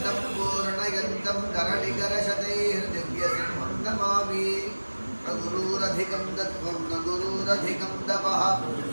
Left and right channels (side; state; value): both; inverted; correlation -1.00